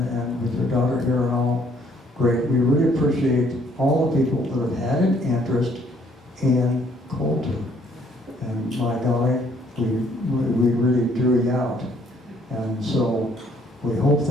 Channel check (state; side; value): normal; both; correlation 0.65